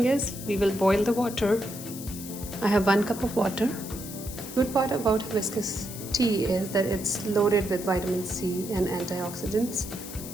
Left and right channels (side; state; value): left; noise; hiss, 11 dB below the sound